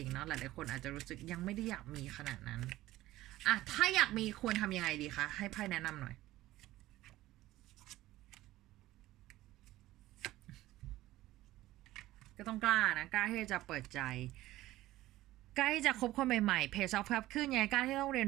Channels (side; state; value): left; quieter; 16.1 dB